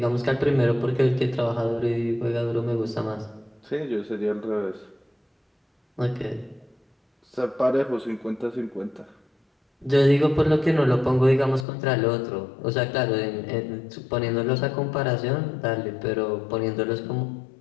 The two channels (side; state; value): right; drops out; at 11.7 s